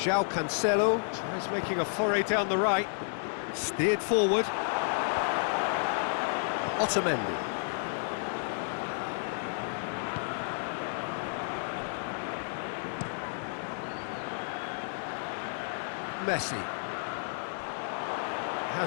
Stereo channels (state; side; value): silent; right; 56 dB below the other